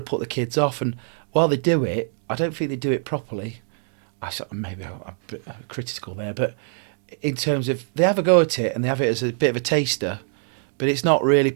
to put the kids off. And while they do it, I don't think they do it properly. Maybe I'm a bit critical there, but in terms of they have a go at it and they have it as a bit of a taster, but it's not really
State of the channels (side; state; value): left; silent; 63 dB below the other